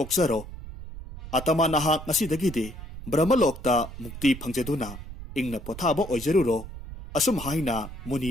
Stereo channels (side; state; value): right; noise; rumble, 12 dB below the sound